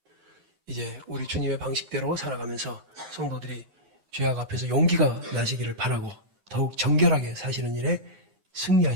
이제 우리 주님의 방식대로 살아가면서 성도들이 죄악 앞에서 용기가 나시기를 바라고 더욱 정결하게 사시는 일에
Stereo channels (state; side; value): late; left; 9.8 ms